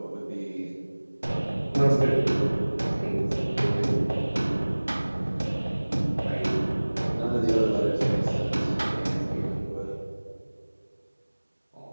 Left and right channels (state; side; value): inverted; both; correlation -1.00